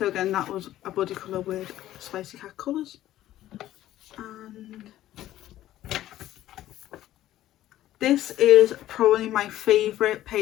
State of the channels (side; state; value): right; quieter; 13.7 dB